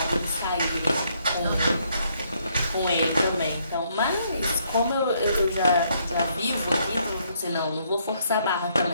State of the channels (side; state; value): both; inverted; correlation -0.71